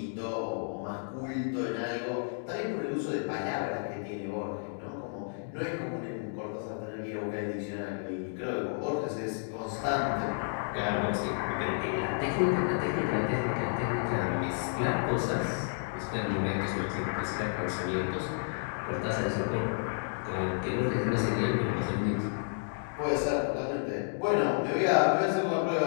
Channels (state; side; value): silent; right; digital silence